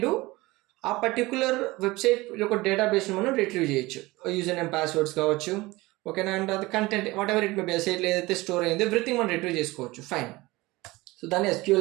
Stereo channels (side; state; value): left; quieter; 20.9 dB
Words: డూ, ఆ పర్టికులర్ వెబ్సైట్ యొక్క డేటాబేస్ని మనం రిట్రీవ్ చేయొచ్చు. యూజర్ నేమ్, పాస్వర్డ్స్ కావచ్చు, ఓకేనా, అండ్ అది content what ever it may be, సైట్లో ఏదైతే స్టోర్ అయిందో ఎవ్రీథింగ్ మనం రిట్రీవ్ చేసుకోవచ్చు, ఫైన్. సో దాన్ని